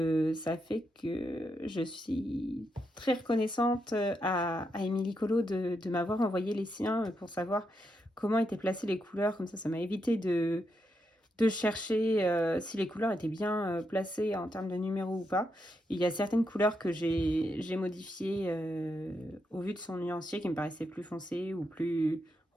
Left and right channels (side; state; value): both; normal; correlation 0.82